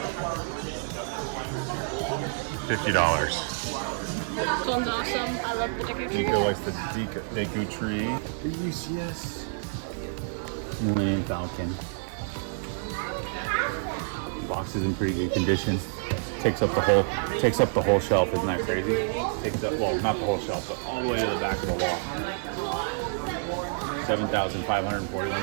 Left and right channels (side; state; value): left; silent; digital silence